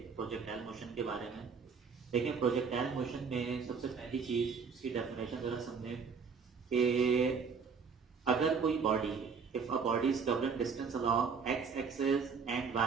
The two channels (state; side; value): quieter; left; 5.7 dB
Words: प्रोजेक्टाइल मोशन के बारे में। देखिए, प्रोजेक्टाइल मोशन में सबसे पहली चीज इसकी डेफिनेशन जरा समझें कि अगर कोई body, if a body is covering distance along X axis and